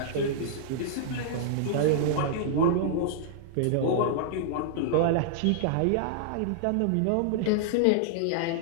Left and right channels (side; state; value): both; different; correlation -0.01